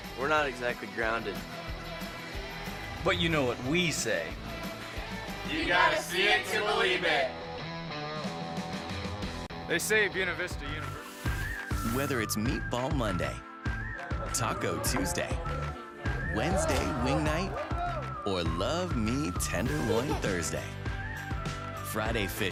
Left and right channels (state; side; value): identical; both; correlation 1.00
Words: we're not exactly grounded. But you know what we say. You gotta see it to believe it. They say Buena Vista University. Whether it's Meatball Monday, Taco Tuesday, Wednesday Wing Night, or Love Me Tenderloin Thursday, Friday